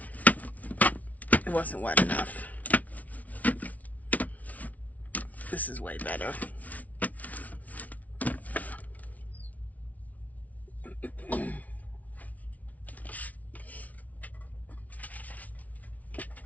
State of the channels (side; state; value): right; late; 0.071 ms